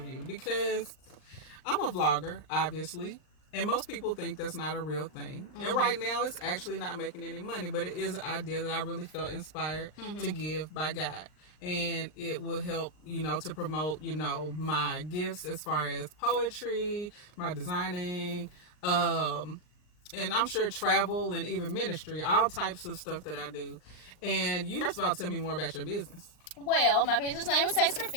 you because I'm a vlogger, obviously, and most people think that's not a real thing. And right now, it's actually not making any money, but it is an idea that I really felt inspired to give by God. And it will help, to promote, my gifts as far as poetry, my designing, and I'm sure travel and even ministry, all types of stuff that I do. And you first of all tell me more about your business. Well, my business name is Tasty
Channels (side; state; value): right; late; 39 ms